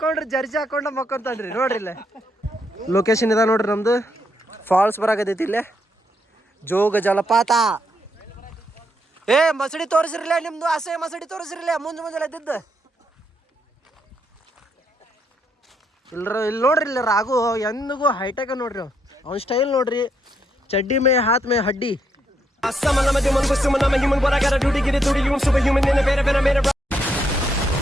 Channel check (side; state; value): both; normal; correlation 0.76